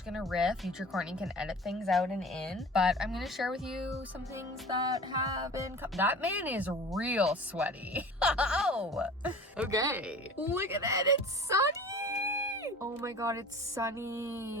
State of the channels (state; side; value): normal; both; correlation 0.41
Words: going to riff. Future Courtney can edit things out and in, but I'm going to share with you some things that have been... That man is real sweaty. Oh, okay. Look at that. It's sunny. Oh my god, it's